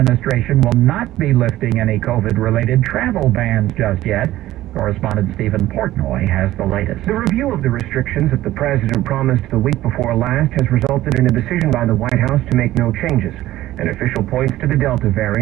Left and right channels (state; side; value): quieter; left; 15.1 dB